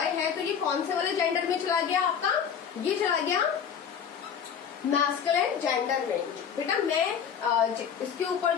है तो ये कौन से वाले जेंडर में चला गया आपका, ये चला गया मैस्कुलिन जेंडर में। बेटा मैं इसके ऊपर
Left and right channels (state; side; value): quieter; right; 7.6 dB